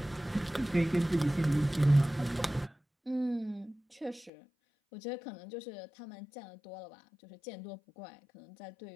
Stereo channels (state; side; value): drops out; right; at 4.3 s